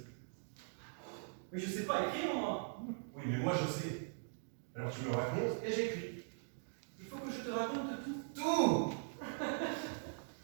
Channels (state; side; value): silent; left; digital silence